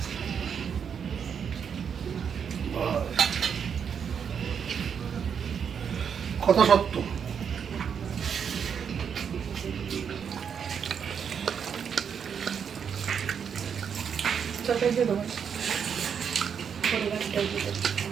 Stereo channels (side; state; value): left; quieter; 7.3 dB